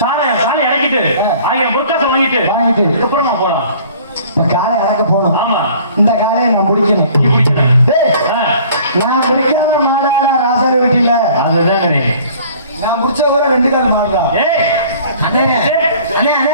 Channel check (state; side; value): inverted; both; correlation -0.51